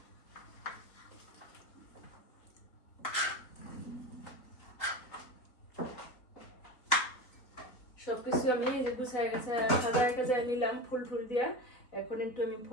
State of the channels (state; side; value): late; right; 3.7 ms